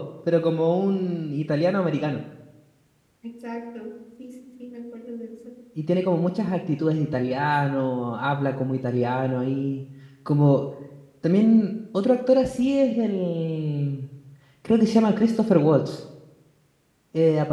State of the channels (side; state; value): both; identical; correlation 1.00